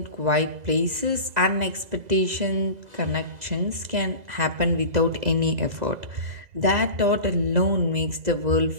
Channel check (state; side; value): late; left; 2.0 ms